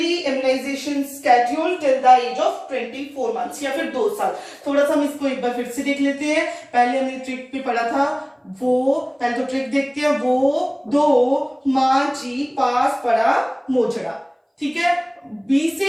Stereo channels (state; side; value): identical; both; correlation 1.00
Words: immunisation schedule till the age of 24 months या फिर 2 साल। थोड़ा सा हम इसको एक बार फिर से देख लेते हैं। पहले हमने ट्रिक पे पढ़ा था, वो पहले तो ट्रिक देखते हैं, वो दो मांझी पास पड़ा मोजड़ा, ठीक है। बी